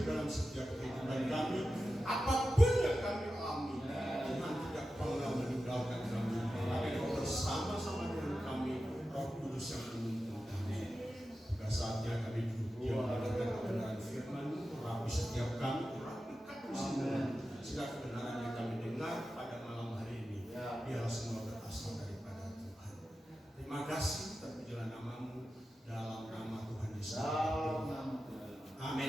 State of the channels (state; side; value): normal; both; correlation 0.92